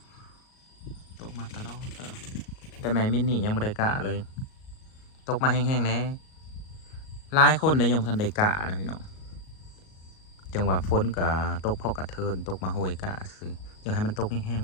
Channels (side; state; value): right; late; 38 ms